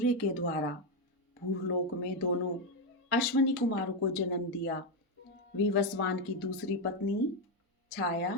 के द्वारा भूलोक में दोनों अश्वनी कुमारों को जन्म दिया। विवस्वान की दूसरी पत्नी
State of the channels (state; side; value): normal; both; correlation 0.06